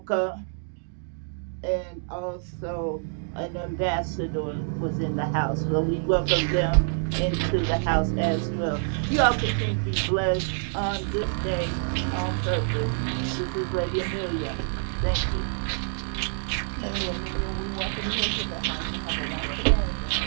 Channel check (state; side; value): silent; left; 60 dB below the other